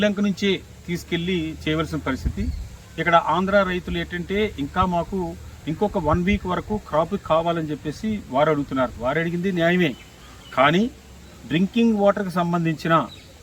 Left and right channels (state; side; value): identical; both; correlation 1.00